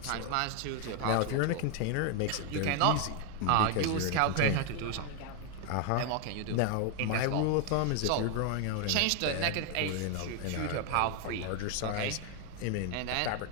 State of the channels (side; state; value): both; different; correlation 0.00